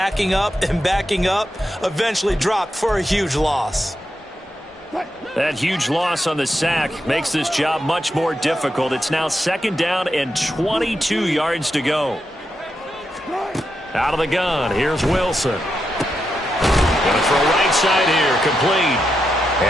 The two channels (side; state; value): both; normal; correlation 0.85